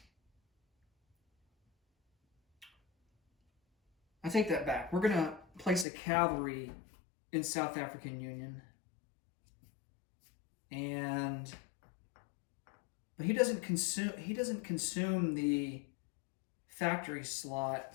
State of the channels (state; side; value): drops out; right; at 5.9 s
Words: I take that back. We're going to place a cavalry in South African Union. But he doesn't consume the factory